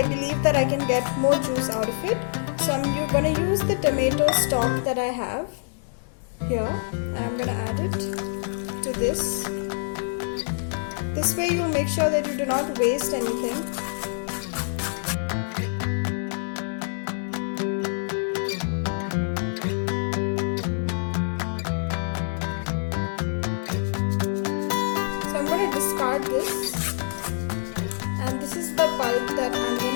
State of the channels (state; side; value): silent; right; digital silence